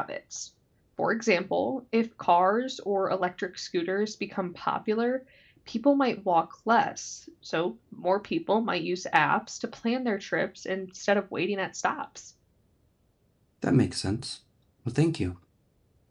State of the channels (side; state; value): both; identical; correlation 1.00